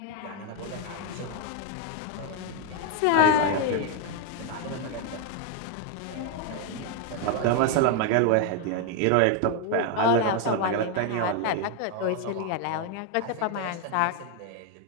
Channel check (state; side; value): different; both; correlation 0.01